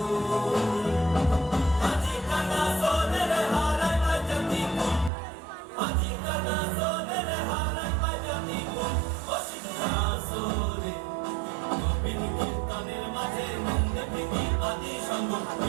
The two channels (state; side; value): drops out; left; at 5.1 s